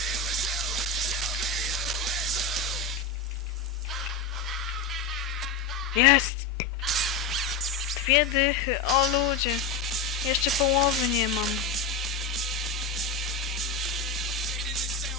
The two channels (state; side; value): quieter; right; 4.7 dB